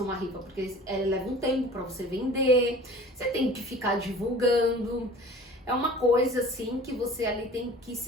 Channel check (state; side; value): normal; both; correlation 0.44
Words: uma rifa, porque leva um tempo para você vender, você tem que ficar divulgando. É uma coisa assim que você ali tem que